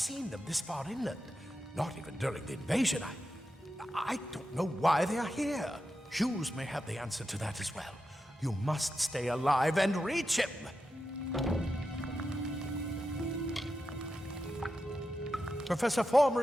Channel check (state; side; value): normal; both; correlation 0.89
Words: them this far inland, not even during the invasion. I don't know why they are here. Hughes may have the answer to that as well. You must stay alive and reach him. Professor